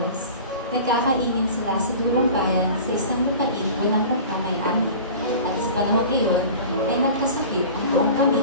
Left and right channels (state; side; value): inverted; both; correlation -0.39